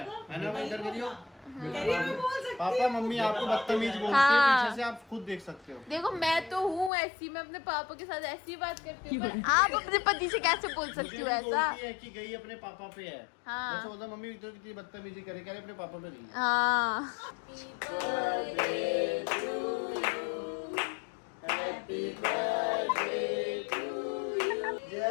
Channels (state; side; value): drops out; right; at 6.9 s